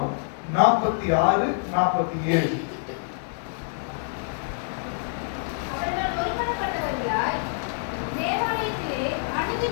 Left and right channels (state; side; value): silent; right; digital silence